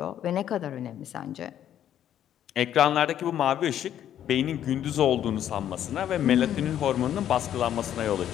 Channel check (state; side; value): quieter; right; 10.6 dB